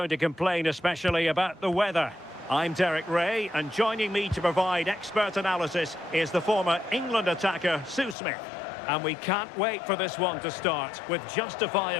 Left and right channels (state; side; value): drops out; right; at 8.2 s